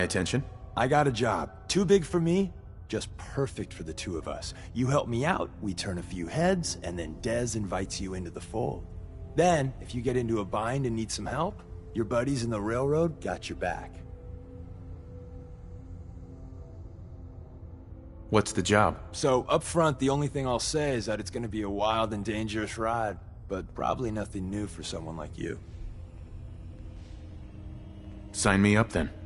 attention. I got a job. Too big for me, just perfect for the two of us. You help me out, we turn a few heads, and then Dez invites you into the fold. Then, if you get into a bind and need some help, your buddies in the railroad got your back. What's the job? So, up front, the only thing I'll say is that it's gonna be a wild and dangerous ride, but probably nothing new for someone like you. Sign me up then.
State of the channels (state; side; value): identical; both; correlation 1.00